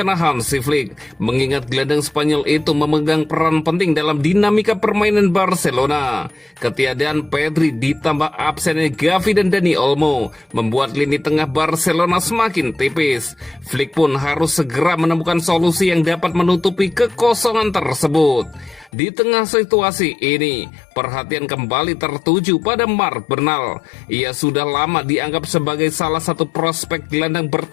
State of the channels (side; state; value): right; drops out; at 18.9 s